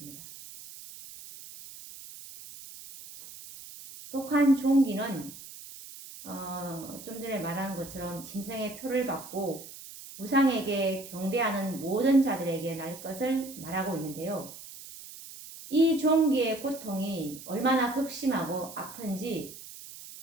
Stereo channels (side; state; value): right; noise; hiss, 15 dB below the sound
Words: 독한 종기는 좀 전에 말한 것처럼 짐승의 표를 받고 우상에게 경배하는 모든 자들에게 날 것을 말하고 있는데요. 이 종기의 고통이 얼마나 극심하고 아픈지